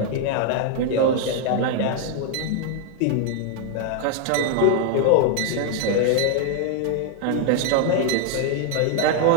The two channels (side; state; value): both; different; correlation 0.00